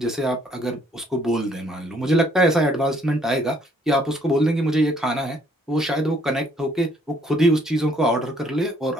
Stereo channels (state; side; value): normal; both; correlation 0.65